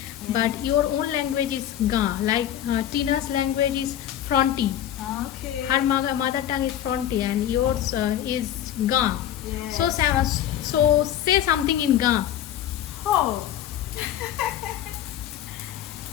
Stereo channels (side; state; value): right; quieter; 11.3 dB